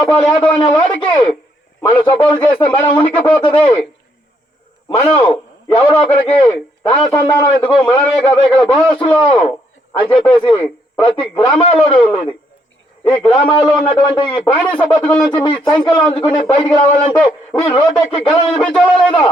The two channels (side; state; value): both; normal; correlation 0.72